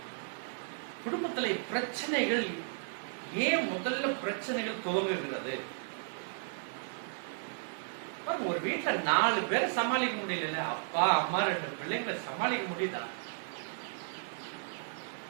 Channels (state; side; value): silent; left; digital silence